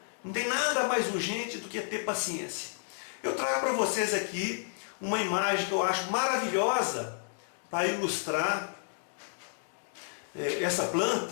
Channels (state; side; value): silent; right; digital silence